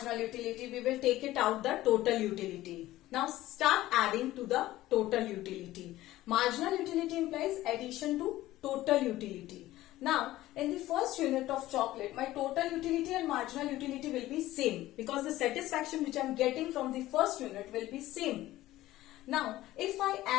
utility we will take it out the total utility. Now start adding to the total utility. Marginal utility implies addition to total utility. Now, in the first unit of chocolate, my total utility and marginal utility will be same because the satisfaction which I am getting from the first unit will be same. Now, if I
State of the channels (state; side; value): quieter; right; 15.8 dB